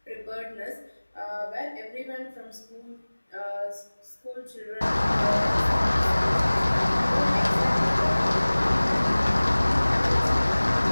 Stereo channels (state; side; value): inverted; both; correlation -1.00